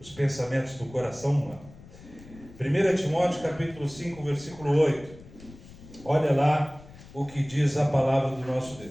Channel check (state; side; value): noise; left; rumble, 20 dB below the sound